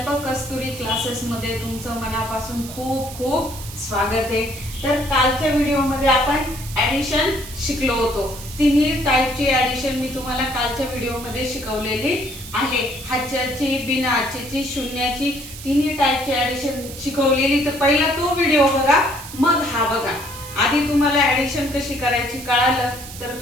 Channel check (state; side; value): noise; right; hiss, 13 dB below the sound